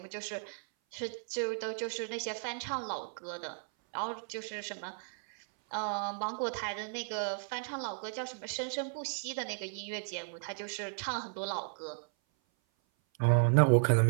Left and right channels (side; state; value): left; silent; 55 dB below the other